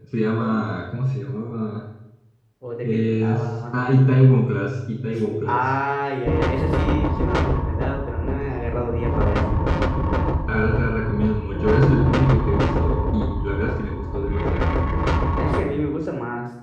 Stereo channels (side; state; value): both; identical; correlation 1.00